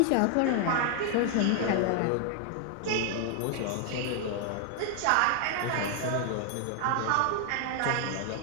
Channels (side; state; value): both; different; correlation 0.00